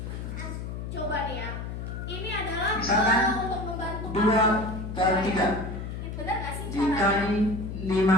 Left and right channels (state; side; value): noise; left; hum, 6 dB below the sound